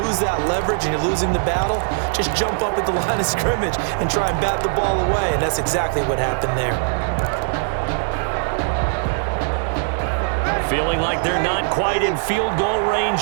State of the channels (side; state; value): left; silent; digital silence